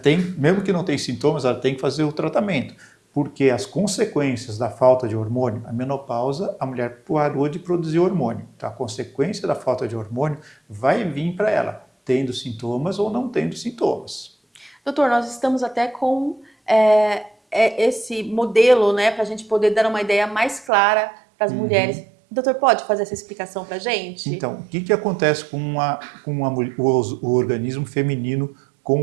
mesmo que não tenha sintomas, ela tem que fazer o tratamento, porque as consequências da falta de hormônio, a menopausa, a mulher parou de produzir hormônio. Então, a consequência da falta de hormônio vai vir para ela, tendo sintomas ou não tendo sintomas. Doutor, nós estamos até com esse modelo, né, para a gente poder dar uma ideia mais clara para as mulheres. Doutor, pode fazer essa explicação para a gente? Então, o que acontece o organismo feminino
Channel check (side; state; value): left; drops out; at 20.7 s